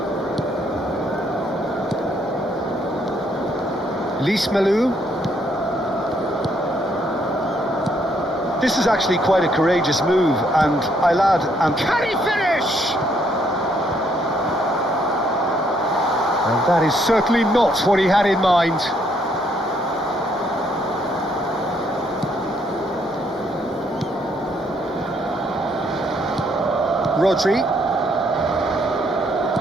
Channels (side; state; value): both; normal; correlation 0.70